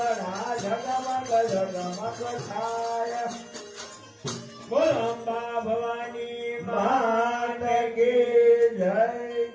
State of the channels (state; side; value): identical; both; correlation 1.00